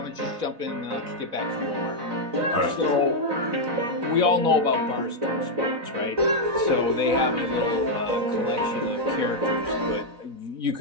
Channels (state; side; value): late; left; 4.1 ms